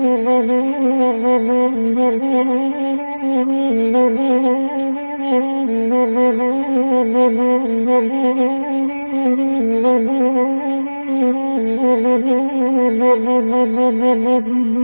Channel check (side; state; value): both; inverted; correlation -1.00